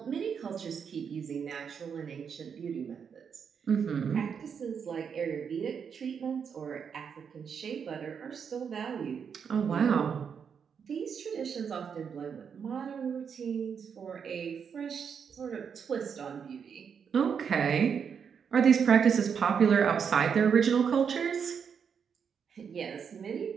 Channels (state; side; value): quieter; left; 6.9 dB